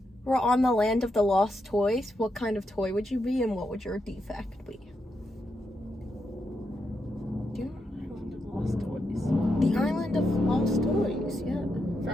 were on the land of the lost toys, what kind of toy would you be and what would your defect be? Do you know Lost toys. the Island of Lost Toys? Yeah.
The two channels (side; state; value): both; normal; correlation 0.83